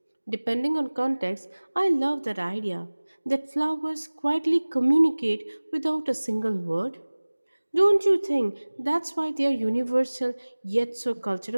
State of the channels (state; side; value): inverted; both; correlation -1.00